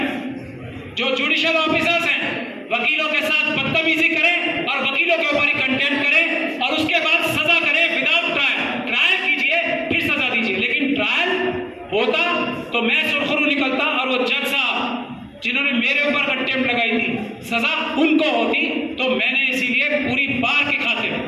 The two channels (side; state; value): both; identical; correlation 1.00